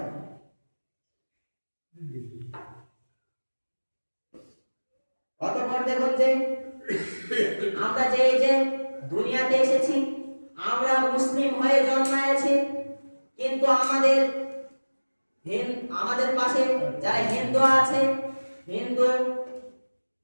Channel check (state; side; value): inverted; both; correlation -1.00